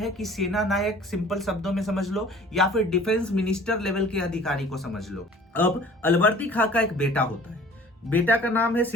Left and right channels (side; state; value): both; normal; correlation 0.48